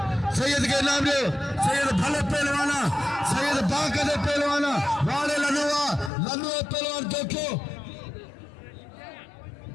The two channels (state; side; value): drops out; right; at 6.1 s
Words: सैयद के नाम ले सैयद भले पहलवाना सैयद बाकद पहलवाना वाले लनुआ पहलवान देखो